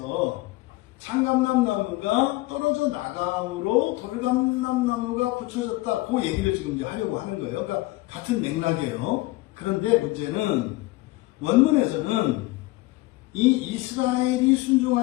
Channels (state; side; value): quieter; right; 20.0 dB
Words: 참감람나무가 떨어져 나감으로 돌감람나무가 붙여졌다. 그 얘기를 지금 이제 하려고 하는 거예요. 그러니까 같은 맥락이에요. 그런데 문제는 원문에서는 이 이스라엘이